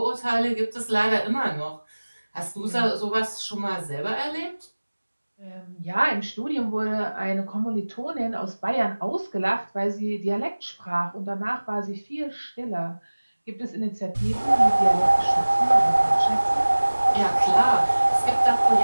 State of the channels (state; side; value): inverted; both; correlation -1.00